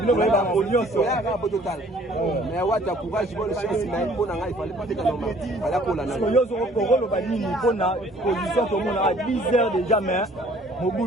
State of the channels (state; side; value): normal; both; correlation 0.56